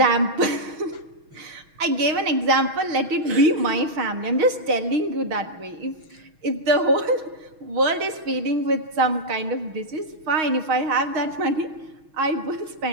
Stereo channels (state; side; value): late; left; 6.3 ms